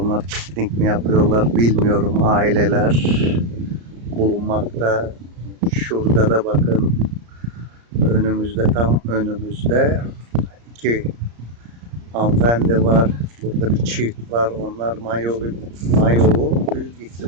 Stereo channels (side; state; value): left; late; 34 ms